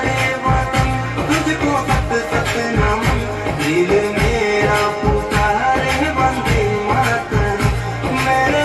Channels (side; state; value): both; identical; correlation 1.00